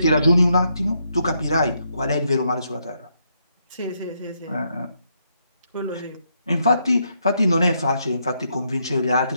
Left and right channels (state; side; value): inverted; both; correlation -0.77